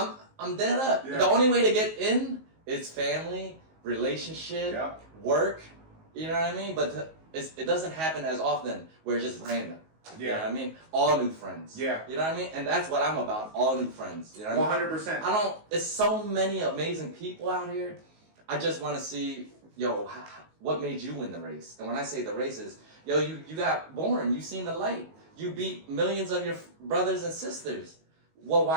dead up. The only way to get in is family, relationship, work, you know what I mean? But it doesn't happen as often where it's just random. You know what I mean? All new friends. You know what I mean? And that's what I'm about, all new friends. You know what 100%. I mean? It's so many amazing people out here. I just want to see, yo, what made you win the race? And when I say the race is, yo, you got born, you seen the light. You beat millions of your brothers and sisters. Well,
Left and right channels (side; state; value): left; late; 19 ms